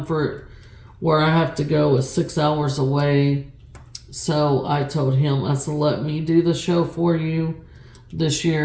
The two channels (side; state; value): both; identical; correlation 1.00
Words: Where I have to go is 6 hours away. So I told him, I said, let me do the show for you this